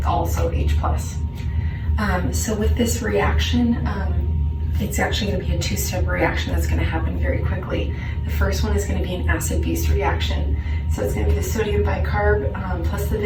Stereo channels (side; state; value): both; identical; correlation 1.00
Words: also H+. So with this reaction, it's actually going to be a two-step reaction that's going to happen very quickly. The first one is going to be an acid-base reaction. So it's going to be the sodium bicarb plus the